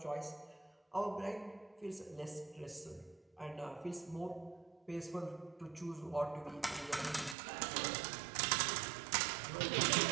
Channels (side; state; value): left; drops out; at 7.4 s